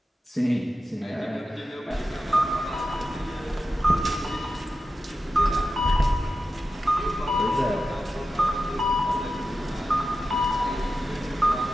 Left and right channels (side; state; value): both; normal; correlation 0.91